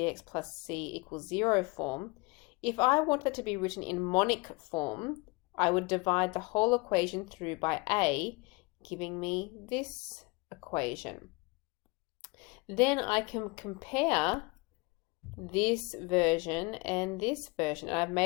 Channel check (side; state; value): right; quieter; 26.7 dB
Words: plus c equals 0 form, if I want that to be written in monic form, I would divide the whole equation through by a, giving me this equation. Then I can compare this version and this version, and I've